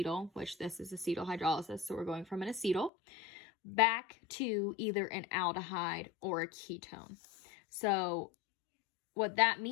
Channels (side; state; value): right; drops out; at 2.9 s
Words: which this is acetal hydrolysis. So we're going from an acetal back to either an aldehyde or a ketone. So what that